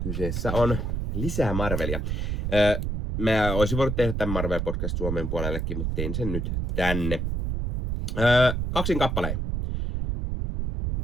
on lisää Marvelia. Mä olisin voinut tehdä tämän Marvel Podcast Suomen puolellekin, mutta tein sen nyt tänne. 2 kappaleen.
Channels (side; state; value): right; noise; rumble, 1 dB below the sound